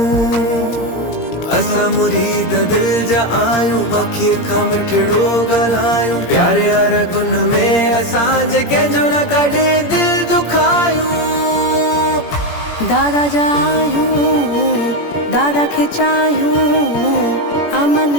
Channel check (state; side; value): late; right; 17 ms